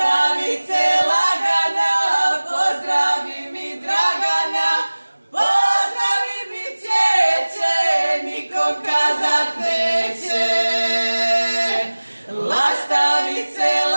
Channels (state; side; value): inverted; both; correlation -1.00